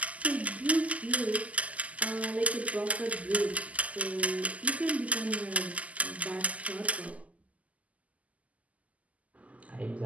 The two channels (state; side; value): late; left; 0.071 ms